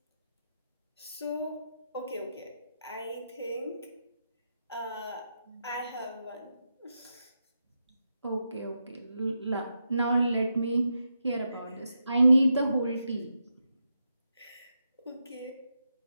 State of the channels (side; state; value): both; inverted; correlation -0.86